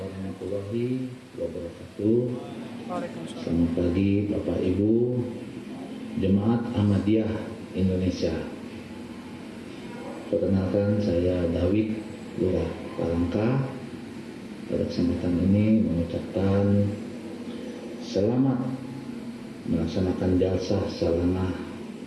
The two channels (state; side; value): identical; both; correlation 1.00